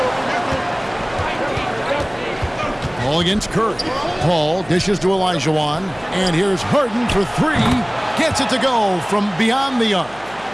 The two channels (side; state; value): right; noise; hum, 23 dB below the sound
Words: Paul against Curry. Paul dishes to Elijah, and here's Harden for 3. Gets it to go from beyond the arc.